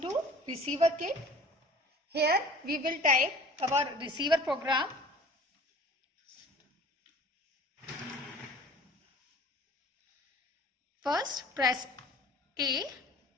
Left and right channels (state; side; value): normal; both; correlation 0.46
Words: receiver kit. Here we will type our receiver program. First press A